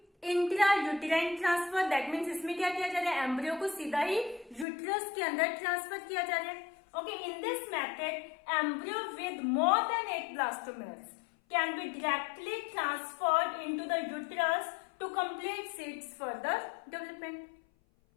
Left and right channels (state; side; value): drops out; right; at 4.7 s